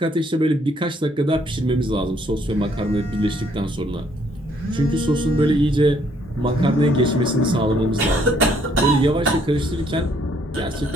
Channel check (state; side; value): normal; both; correlation 0.66